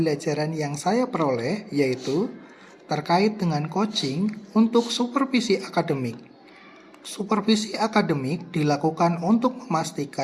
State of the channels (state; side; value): identical; both; correlation 1.00